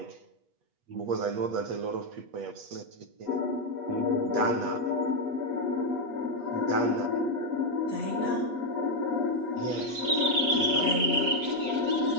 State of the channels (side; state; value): left; late; 8.3 ms